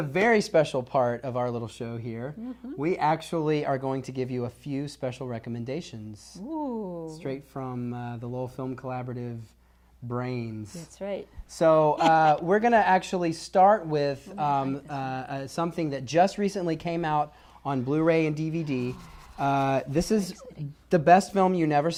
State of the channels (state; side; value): identical; both; correlation 1.00